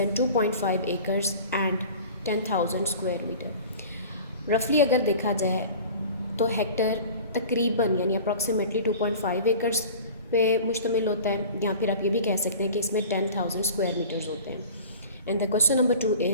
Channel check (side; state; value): both; inverted; correlation -0.41